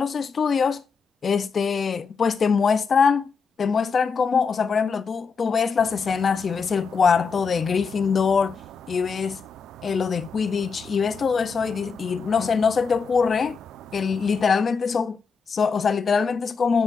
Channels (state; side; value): quieter; right; 5.4 dB